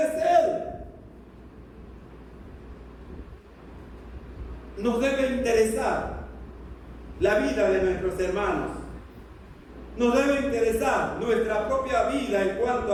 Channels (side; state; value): both; identical; correlation 1.00